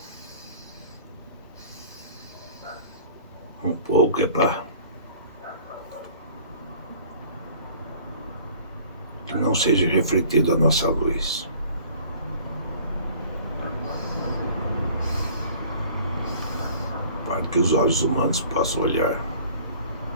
Um pouco é para que não seja refletida a nossa luz. Para que os olhos humanos possam olhar.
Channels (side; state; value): both; inverted; correlation -0.50